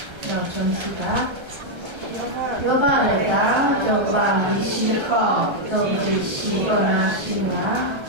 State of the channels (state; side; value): late; left; 1.3 ms